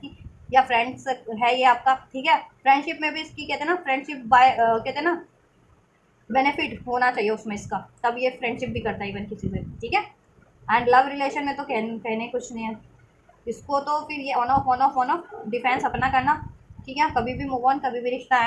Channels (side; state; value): both; identical; correlation 1.00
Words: या फ्रेंड्स है ये आपका, ठीक है। फ्रेंडशिप में भी इसकी, कहते हैं ना, फ्रेंडशिप बाय, कहते हैं ना, बेनिफिट होना चाहिए उसमें इसका, तब ये फ्रेंडशिप भी करता है इवन किसी से, ठीक है। एंड लव रिलेशन में तो कहने कुछ नहीं है इसको, तो फिर ये ऑन ऑफ डिफेंस अपना करना, ठीक है, कभी भी मूव ऑन, कभी भी रिश्ता